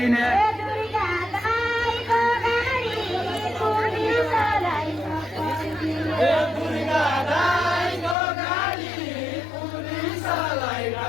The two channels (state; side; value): drops out; right; at 8.2 s